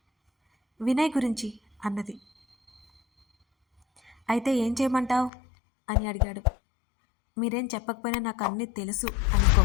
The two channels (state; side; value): drops out; right; at 5.3 s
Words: వినయ్ గురించి అన్నది. అయితే ఏం చేయమంటావు అని అడిగాడు. మీరేం చెప్పకపోయినా నాకు అన్నీ తెలుసు అని